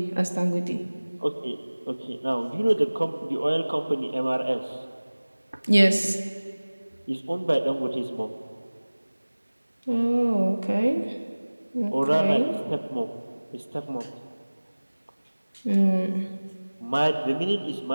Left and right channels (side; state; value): both; inverted; correlation -1.00